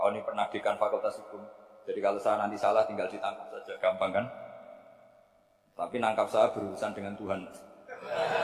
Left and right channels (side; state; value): both; identical; correlation 1.00